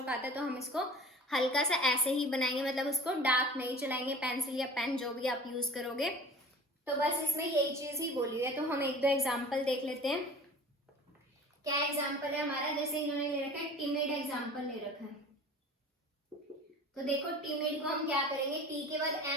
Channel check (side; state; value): both; normal; correlation 0.42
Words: आता है तो हम इसको हल्का सा ऐसे ही बनाएंगे, मतलब उसको डार्क नहीं चलाएंगे, पेंसिल या पेन जो भी आप यूज करोगे। तो बस इसमें यही चीज ही बोली हुई है। तो हम एक दो एग्जाम्पल देख लेते हैं। क्या एग्जाम्पल है हमारा, जैसे इन्होंने ले रखा है टिमिड एग्जाम्पल ले रखा है। तो देखो टिमिड को हम क्या करेंगे, टी के बाद